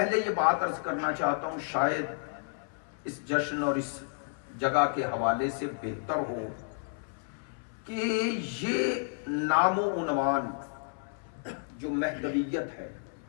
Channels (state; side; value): silent; right; 57 dB below the other